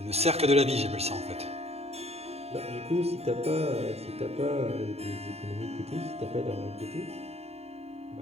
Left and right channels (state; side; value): late; left; 0.30 ms